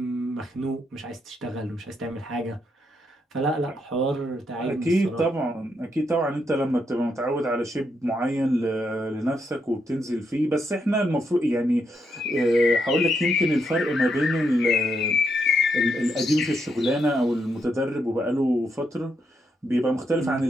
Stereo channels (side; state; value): both; normal; correlation 0.79